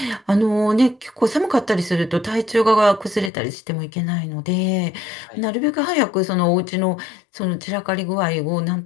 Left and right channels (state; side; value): drops out; right; at 3.3 s